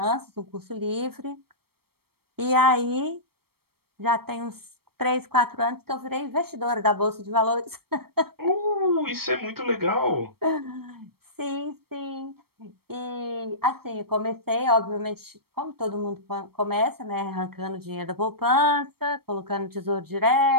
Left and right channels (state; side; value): late; left; 0.95 ms